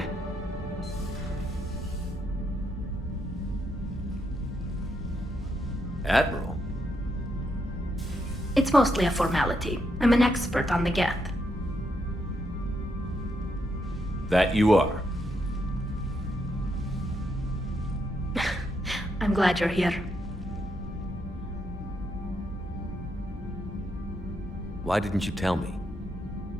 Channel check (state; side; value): normal; both; correlation 0.79